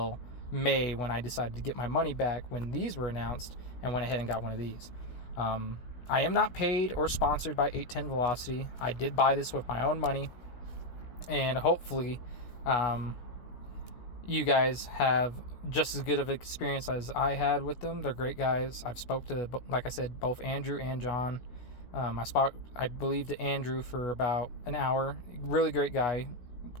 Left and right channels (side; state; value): right; late; 16 ms